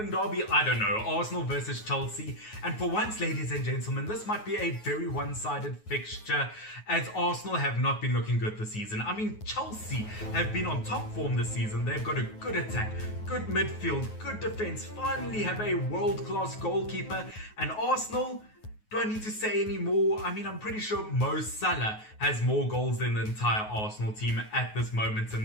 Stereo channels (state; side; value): late; right; 9.4 ms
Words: derby, I don't know, Arsenal versus Chelsea. And for once, ladies and gentlemen, this might be a very one-sided fixture, as Arsenal have not been looking good this season. I mean, Chelsea have been on top form this season. They've got a good attack, good midfield, good defense, finally have a world-class goalkeeper. And Arsenal, do I need to say any more? I mean, I'm pretty sure Mo Salah has more goals than the entire Arsenal team at this moment